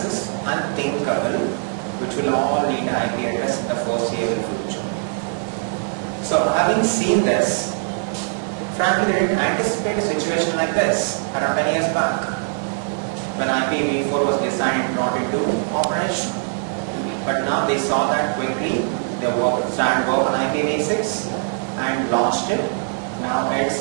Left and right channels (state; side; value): silent; left; 58 dB below the other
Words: unthinkable, which will all need an IP address in the foreseeable future. So having seen this, frankly they didn't anticipate a situation like this around 10 years back, when IPv4 was designed and brought into operation. But now they saw that quickly, they started work on IPv6 and launched it. Now it's